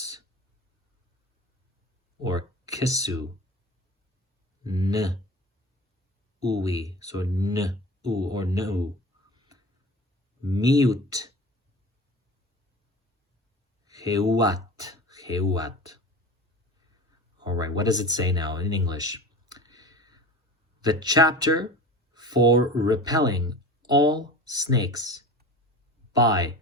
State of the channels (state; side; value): normal; both; correlation 0.34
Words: or Kisu. N, Uwi, so N, U, or No. Mute, 𝓤𝓐. All right, what does it say now in English? The chapter for repelling all snakes by